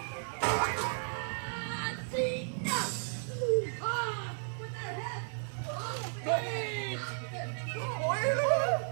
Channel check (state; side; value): silent; left; digital silence